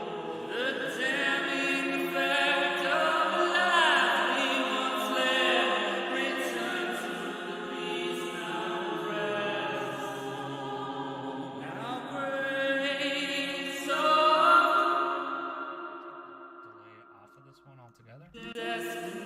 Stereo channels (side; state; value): both; identical; correlation 1.00